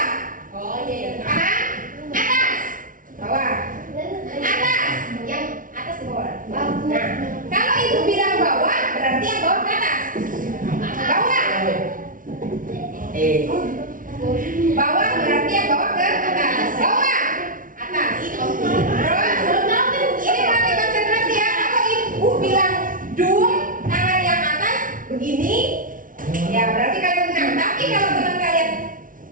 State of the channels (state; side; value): late; left; 0.39 ms